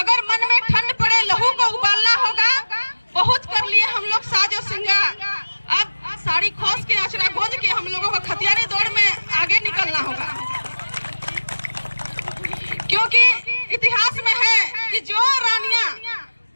मन में ठंड पड़े, लहू को उबालना होगा। बहुत कर लिए हम लोग साज और श्रृंगार, अब साड़ी खोस के आचरा गोज के हम लोगों को खतियानी दौड़ में आगे निकलना होगा, क्योंकि इतिहास में है कि जो रानियां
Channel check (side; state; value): both; inverted; correlation -1.00